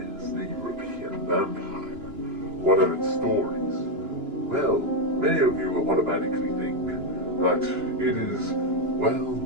the European vampire? What are its stories? Well, many of you automatically think that it is, well,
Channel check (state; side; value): late; left; 2.9 ms